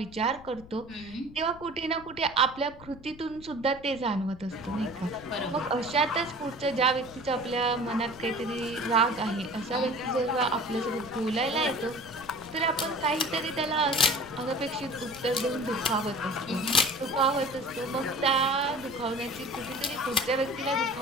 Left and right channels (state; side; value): noise; left; rumble, 19 dB below the sound